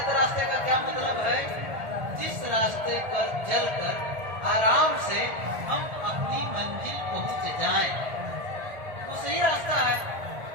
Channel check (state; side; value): late; left; 1.8 ms